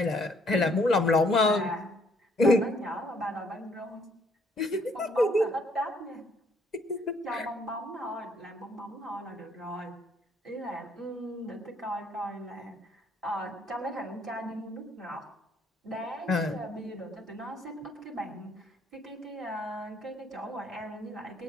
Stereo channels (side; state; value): both; normal; correlation 0.66